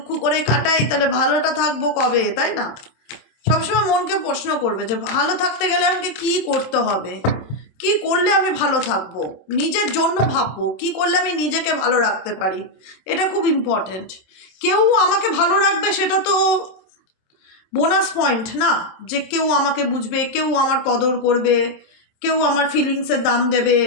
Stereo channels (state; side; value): late; right; 27 ms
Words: করে কাটাই তাহলে ভালোটা থাকবো কবে, তাই না? সবসময় মনকে প্রশ্ন করবে যে ভালো থাকতে গেলে আমাকে কি করতে হবে, কি করলে আমি ভালো থাকবো, নিজের জন্য ভাববো কি করলে আমি নিজেকে ভালো রাখতে পারি। এটা খুব ইম্পর্টেন্ট। কেউ আমাকে ভালো রাখবে সেটা তো বোনাস পয়েন্ট না, যে কেউ আমাকে বুঝবে, কেউ আমার কদর করবে, কেউ আমার ফিলিংসের দাম দেবে,